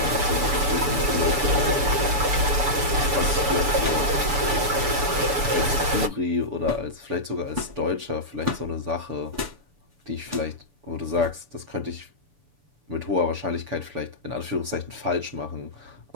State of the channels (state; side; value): late; left; 6.9 ms